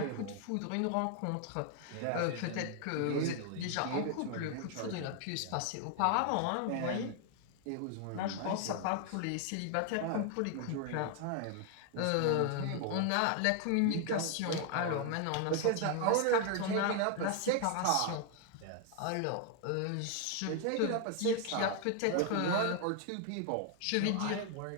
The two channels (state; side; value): different; both; correlation 0.00